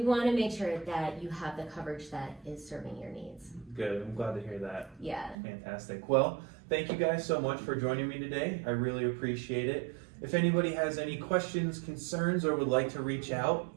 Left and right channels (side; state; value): left; drops out; at 5.4 s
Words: to make sure that you have the coverage that is serving your needs. Good. I'm glad to hear that. Yeah. Fantastic. Well, thank you guys so much for joining me today. I really appreciate it. If anybody has any questions, concerns, or would like to reach out,